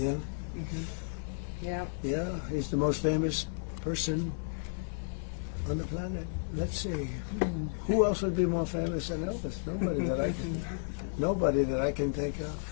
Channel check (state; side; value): silent; right; digital silence